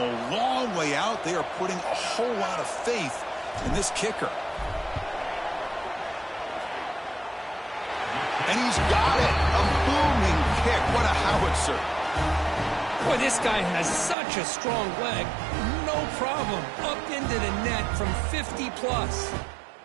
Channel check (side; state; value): left; drops out; at 14.2 s